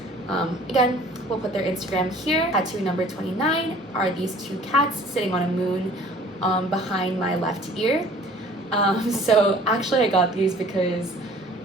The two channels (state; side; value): normal; both; correlation 0.51